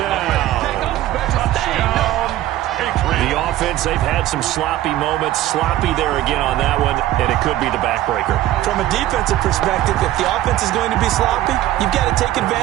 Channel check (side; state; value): left; quieter; 14.3 dB